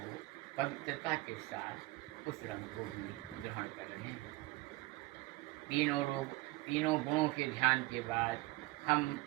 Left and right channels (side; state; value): left; quieter; 21.2 dB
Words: पवित्रता के साथ उस रंग को भी ग्रहण कर रहे हैं। तीनों गुणों के ध्यान के बाद हम